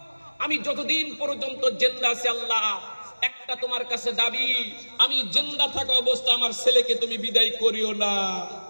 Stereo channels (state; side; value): inverted; both; correlation -1.00